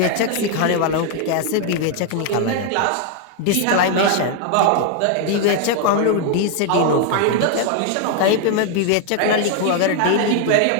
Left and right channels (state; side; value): different; both; correlation 0.00